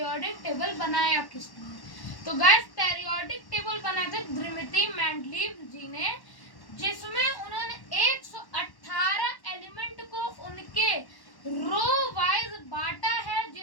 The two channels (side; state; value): right; late; 1.1 ms